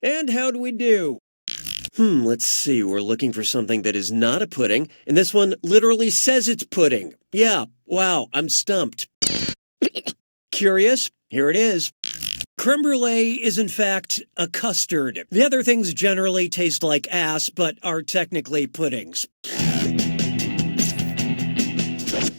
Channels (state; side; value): inverted; both; correlation -1.00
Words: And how'd we do? Let's see. We're looking for something that is not a pudding, and this one literally says it's pudding. Yeah, wow, I'm stumped. Curious? Here it is. Creme brulee is in fact a custard. The other things generally taste like ass, but are technically puddings.